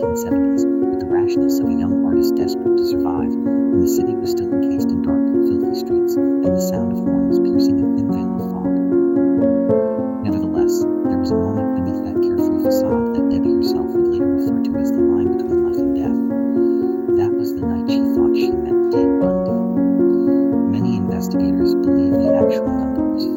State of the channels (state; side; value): identical; both; correlation 1.00